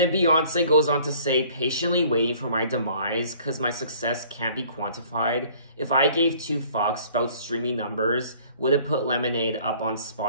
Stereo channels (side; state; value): both; inverted; correlation -0.54